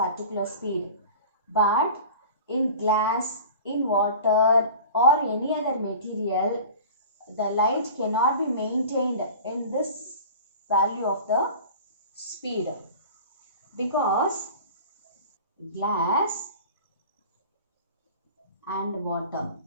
speed. But in glass, in water or any other material, the light cannot be maintained in this value of the speed, because glass and water,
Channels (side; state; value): both; inverted; correlation -0.40